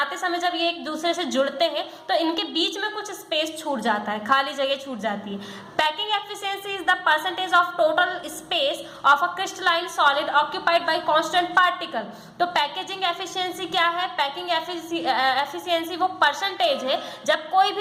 समय जब ये एक दूसरे से जुड़ते हैं तो इनके बीच में कुछ स्पेस छूट जाता है, खाली जगह छूट जाती है। Packing efficiency is the percentage of total space of a crystalline solid occupied by constant particle. तो पैकेजिंग एफिशिएंसी क्या है? पैकिंग एफिशिएंसी वो परसेंटेज है जब कोई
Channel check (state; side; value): identical; both; correlation 1.00